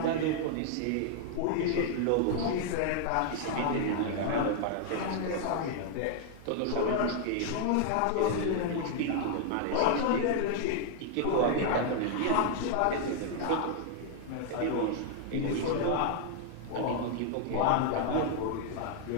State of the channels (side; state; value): both; different; correlation 0.00